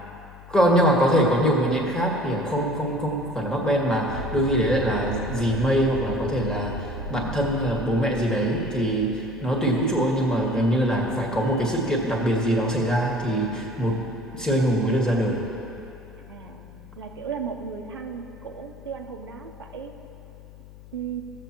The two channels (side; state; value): left; noise; hum, 19 dB below the sound